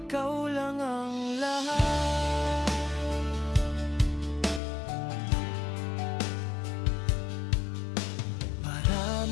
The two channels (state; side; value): drops out; right; at 4.6 s